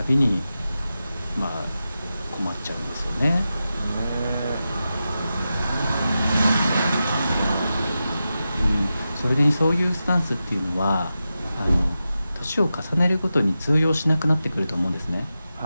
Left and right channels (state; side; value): inverted; both; correlation -0.91